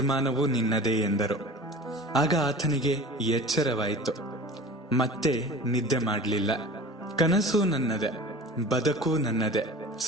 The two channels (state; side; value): normal; both; correlation 0.39